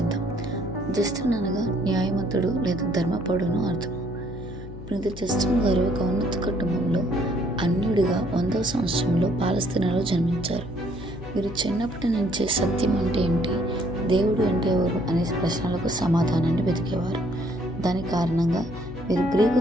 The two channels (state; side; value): noise; left; hum, 13 dB below the sound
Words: జస్టిన్ అనగా న్యాయవంతుడు లేదా ధర్మపరుడును అర్థం. పునీత జస్టిన్ గారు ఒక ఉన్నత కుటుంబంలో అన్యుడిగా 100వ సంవత్సరంలో పాలస్తీనాలో జన్మించారు. వీరు చిన్నప్పటి నుంచే సత్యం అంటే ఏంటి, దేవుడు అంటే ఎవరు అనే ప్రశ్నలకు సమాధానాన్ని వెతికేవారు. దాని కారణంగా వీరు గ్రీకు